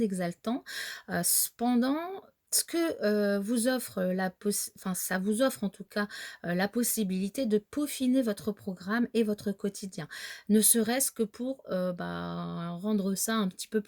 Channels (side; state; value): both; identical; correlation 1.00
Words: Cependant, ce que vous offre enfin, ça vous offre en tout cas la possibilité de peaufiner votre programme et votre quotidien, ne serait-ce que pour rendre ça un petit peu